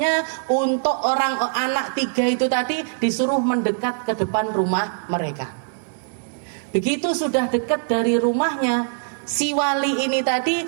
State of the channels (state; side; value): silent; left; digital silence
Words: untuk anak 3 itu tadi disuruh mendekat ke depan rumah mereka. Begitu sudah dekat dari rumahnya, si wali ini tadi